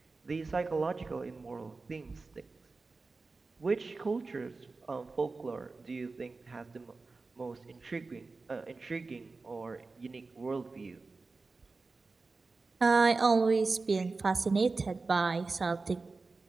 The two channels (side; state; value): left; quieter; 3.9 dB